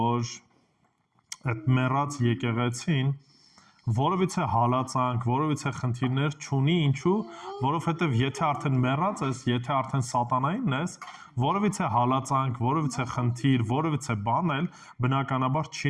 այդ մեռած եկեղեցին որովհետեւ հալածանք, որովհետեւ խնդիրներ չունի, ինչու, որովհետեւ եթե արդեն մեռած ես, եթե արդեն սատանային ես, որովհետեւ հալածանք, որովհետեւ խնդիր, որովհետեւ բան էլ բնականաբար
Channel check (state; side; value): identical; both; correlation 1.00